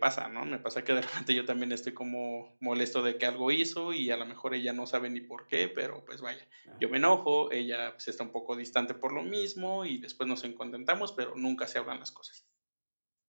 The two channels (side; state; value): both; inverted; correlation -1.00